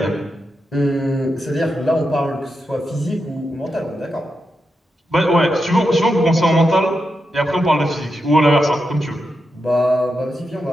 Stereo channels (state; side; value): normal; both; correlation 0.87